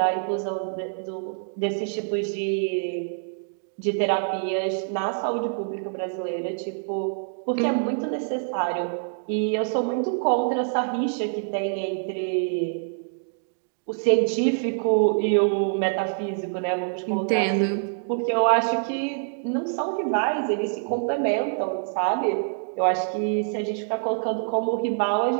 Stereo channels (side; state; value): left; silent; digital silence